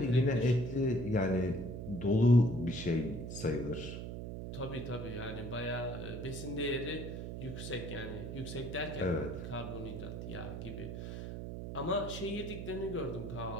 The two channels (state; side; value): noise; right; hum, 6 dB below the sound